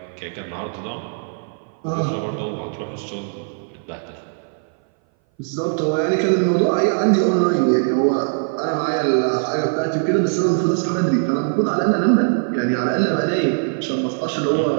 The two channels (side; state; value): left; silent; 59 dB below the other